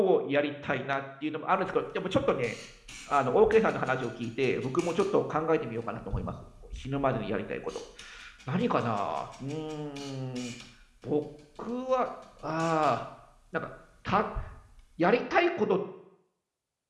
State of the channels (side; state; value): both; identical; correlation 1.00